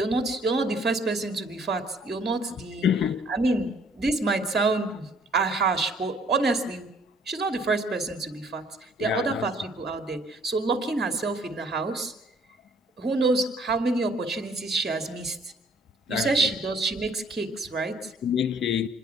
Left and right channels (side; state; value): both; normal; correlation 0.60